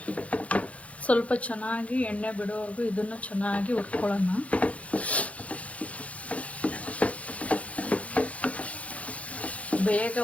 ಸ್ವಲ್ಪ ಚೆನ್ನಾಗಿ ಎಣ್ಣೆ ಬಿಡೋವರೆಗೂ ಇದನ್ನು ಚೆನ್ನಾಗಿ ಹುರ್ಕೊಳ್ಳೋಣ. ಬೇಗ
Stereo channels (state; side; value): late; right; 0.065 ms